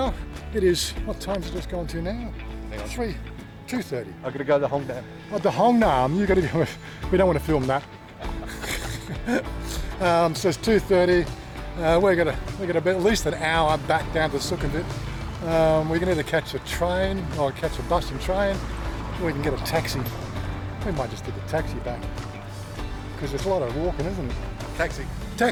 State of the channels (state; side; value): identical; both; correlation 1.00